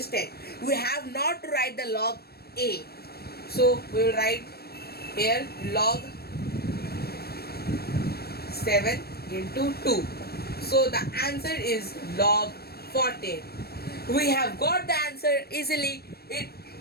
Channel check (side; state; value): right; late; 0.46 ms